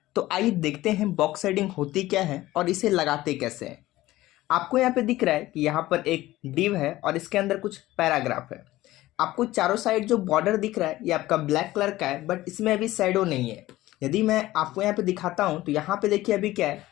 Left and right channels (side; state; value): right; quieter; 16.7 dB